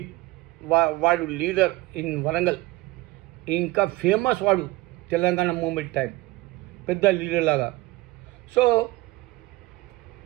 వాడు లీడర్ ఇన్ వరంగల్. ఇంకా ఫేమస్ వాడు తెలంగాణ మూమెంట్ టైం, పెద్ద లీడర్ లాగా. So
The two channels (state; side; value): quieter; left; 19.9 dB